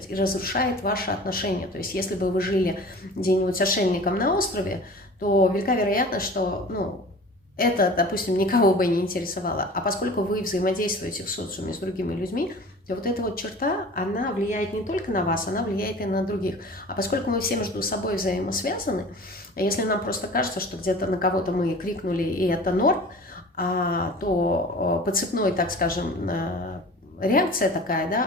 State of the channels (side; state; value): both; normal; correlation 0.41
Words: и разрушает ваши отношения. То есть если бы вы жили где-нибудь отшельником на острове, то велика вероятность, что, ну, это, допустим, никого бы не интересовало. А поскольку вы взаимодействуете в социуме с другими людьми, то вот эта вот черта, она влияет не только на вас, она влияет и на других. А поскольку мы все между собой взаимосвязаны, если нам просто кажется, что где-то на кого-то мы крикнули, и это норм, то по цепной, так скажем, реакция такая,